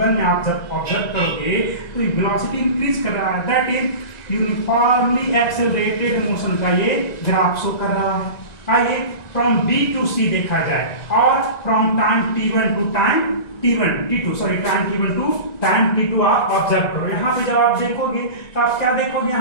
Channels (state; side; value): late; right; 1.9 ms